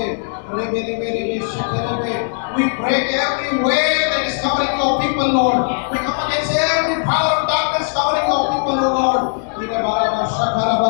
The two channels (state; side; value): silent; right; 67 dB below the other